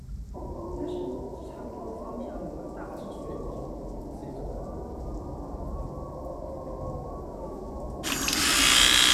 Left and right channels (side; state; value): both; identical; correlation 1.00